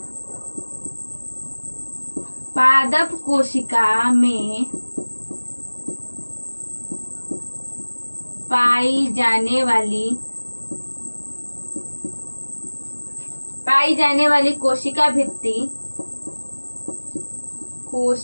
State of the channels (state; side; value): inverted; both; correlation -1.00